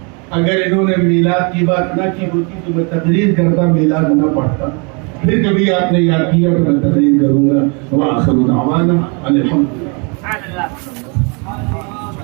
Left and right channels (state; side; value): quieter; left; 33.8 dB